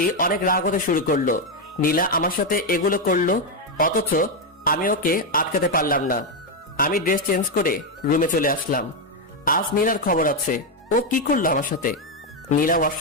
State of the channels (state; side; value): normal; both; correlation 0.05